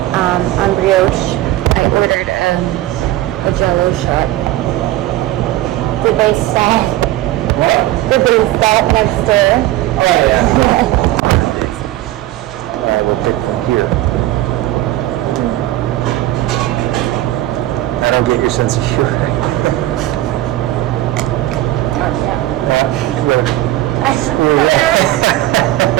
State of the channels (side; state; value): left; quieter; 15.4 dB